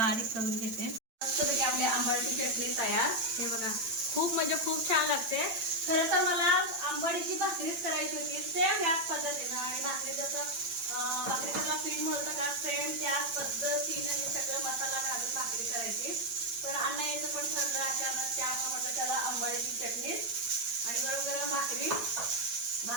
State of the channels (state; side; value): late; left; 8.9 ms